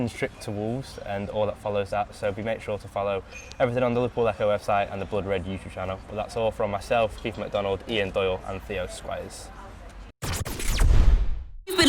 trip to Wolves and all that follows that. So make sure to follow everything on the Liverpool Echo website and the Blood Red YouTube channel. But that's all from myself, Keifer MacDonald, Ian Doyle and Theo Squires. You've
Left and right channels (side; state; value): both; identical; correlation 1.00